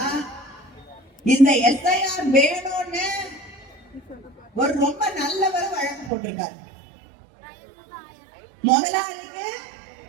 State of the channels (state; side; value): drops out; left; at 6.1 s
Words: இந்த எஸ்ஐஆர் வேணும்னு ஒரு ரொம்ப நல்லவர் வழக்கு போட்டிருக்காரு. முதலாளிக்கு